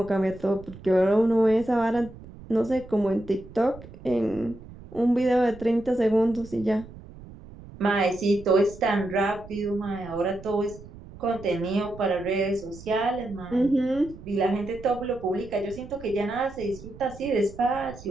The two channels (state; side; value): noise; right; rumble, 17 dB below the sound